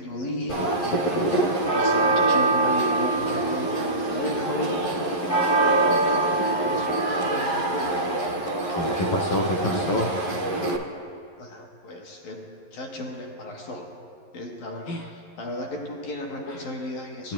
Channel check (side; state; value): right; late; 11 ms